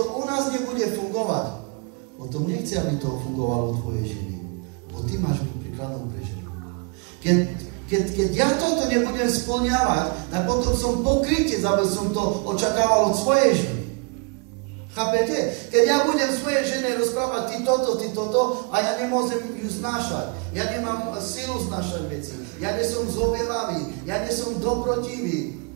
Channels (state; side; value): quieter; left; 33.9 dB